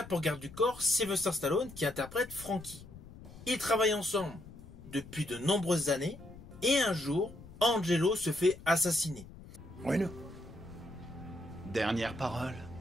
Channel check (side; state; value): left; noise; rumble, 17 dB below the sound